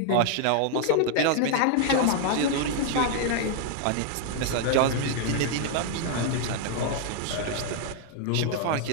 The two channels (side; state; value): both; different; correlation 0.00